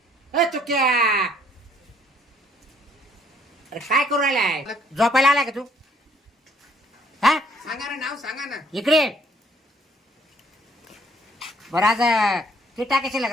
ए तू क्या अरे काय करू राहिलाय झोपायला आलाय का तू हा सांगा ना नाव सांगा ना. इकडे बरं आज ते टाकायचे लग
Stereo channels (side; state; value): both; normal; correlation 0.63